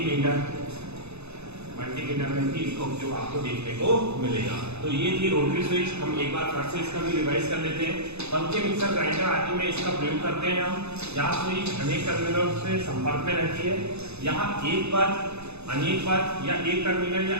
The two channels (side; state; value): left; late; 0.80 ms